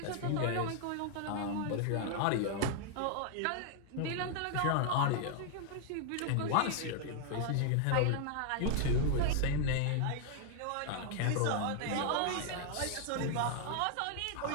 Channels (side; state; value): both; different; correlation 0.00